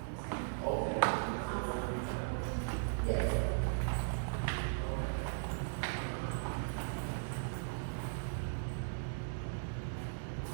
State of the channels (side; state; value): left; silent; digital silence